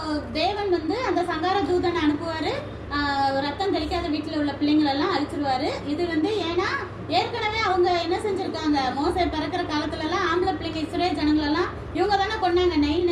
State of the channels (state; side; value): identical; both; correlation 1.00